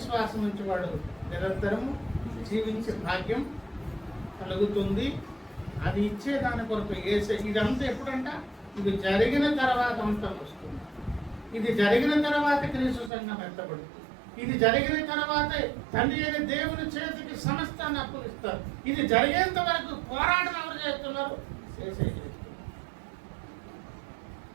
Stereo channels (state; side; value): drops out; left; at 13.1 s